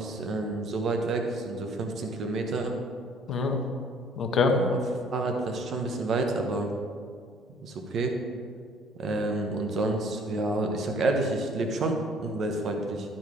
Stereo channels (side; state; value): both; normal; correlation 0.56